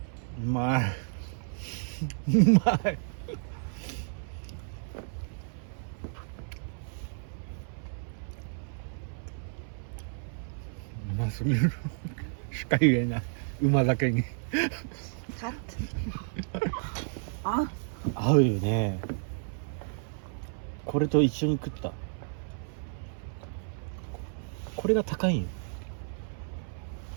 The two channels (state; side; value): silent; left; 56 dB below the other